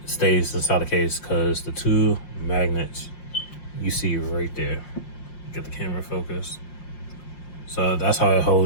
stays inside the case, because the 2 magnets you see right there. Get the camera focused. So that's how it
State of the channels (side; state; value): right; late; 5.6 ms